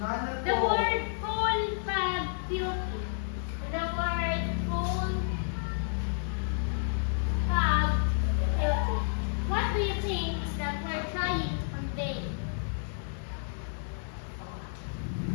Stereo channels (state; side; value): silent; right; 57 dB below the other